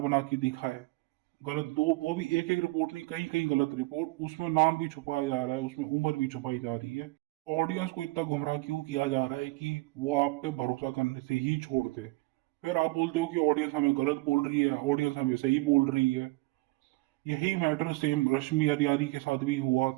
के दिखाए, गलत दो, वो भी एक एक रिपोर्ट नहीं, कई कई गलत रिपोर्ट, उसमें नाम भी छुपाया जा रहा है, उसमें उम्र भी छुपाई जा रही है। ऑडियंस को इतना गुमराह क्यों किया जा रहा है कि वो आप पे भरोसा करने से ही छोड़ दे। फिर आप बोलते हो कि ऑडियंस हमें गलत बोल रही है, ऑडियंस हमें सही बोल रही है। यही मैटर सेम रश्मि हरियारी के साथ भी हुआ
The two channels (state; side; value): quieter; left; 23.0 dB